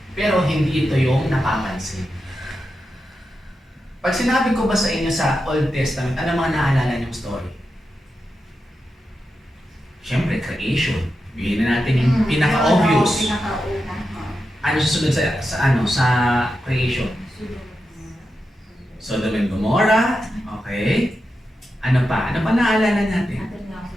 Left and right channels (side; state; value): both; normal; correlation 0.89